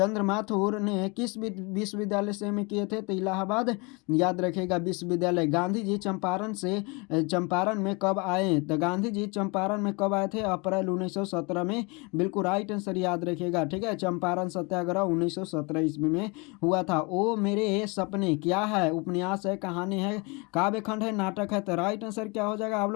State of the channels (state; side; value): quieter; right; 29.2 dB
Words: माथुर ने किस विश्वविद्यालय से में किए थे, तो इलाहाबाद याद रखेगा विश्वविद्यालय। गांधी जी चंपारण में कब आए, तो गांधी जी चंपारण में कब आए थे, अप्रैल 1917 में, बिल्कुल राइट आंसर याद रखिएगा, ठीक है। चंपारण सत्याग्रह 1917 ईस्वी में हुआ था। ओ मेरे सपने क्या है, उपन्यास है, कहानी है, काव्य खंड है, नाटक है, तो राइट आंसर क्या हो जाएगा आप